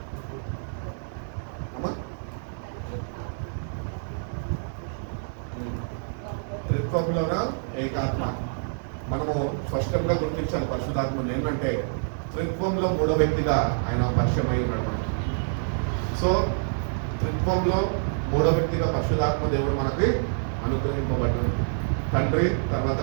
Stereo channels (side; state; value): left; silent; digital silence